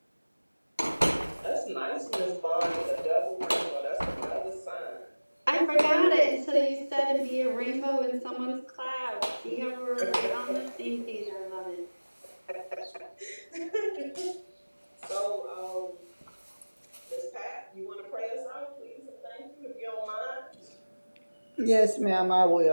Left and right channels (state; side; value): inverted; both; correlation -1.00